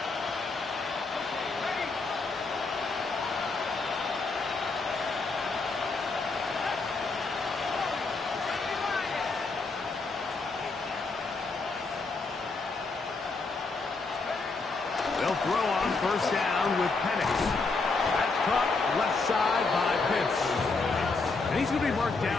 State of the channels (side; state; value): right; quieter; 3.9 dB